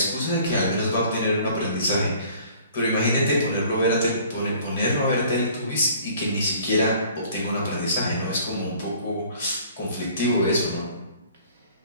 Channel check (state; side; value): inverted; both; correlation -0.53